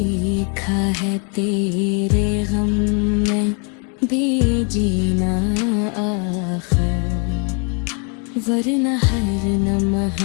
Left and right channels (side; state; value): right; quieter; 38.0 dB